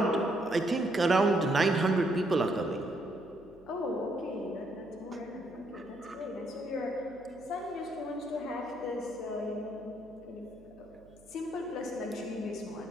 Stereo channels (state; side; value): noise; right; hum, 26 dB below the sound